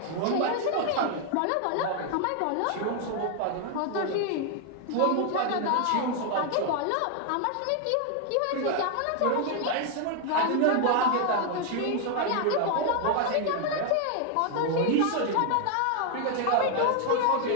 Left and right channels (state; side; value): different; both; correlation 0.00